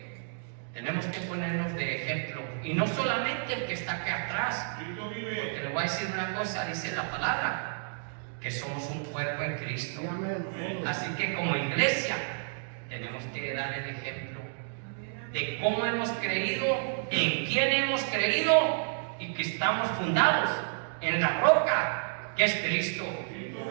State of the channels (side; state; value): left; silent; digital silence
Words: tenemos que ponernos de ejemplo, y no solamente el que está aquí atrás, porque le voy a decir una cosa, dice la palabra, que somos un cuerpo en Cristo. Sí, amén. Así que como iglesia tenemos que dar el ejemplo de cómo hemos creído, en quién hemos creído, y que estamos fundados en la roca que es Cristo.